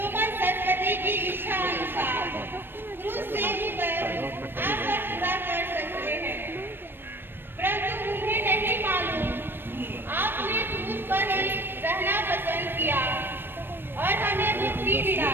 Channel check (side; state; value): left; late; 0.098 ms